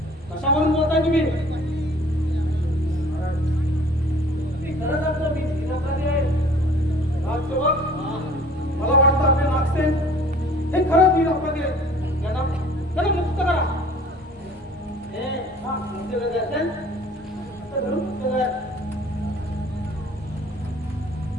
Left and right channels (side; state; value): both; normal; correlation 0.51